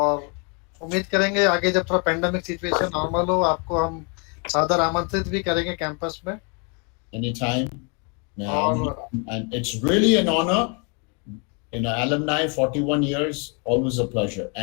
उम्मीद करेंगे आगे जब थोड़ा पेंडेमिक सिचुएशन नॉर्मल हो, आपको हम सादर आमंत्रित भी करेंगे कैंपस में. Anytime. And it's really an honor. Alumni, 41 years, always a pleasure.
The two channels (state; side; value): quieter; right; 35.4 dB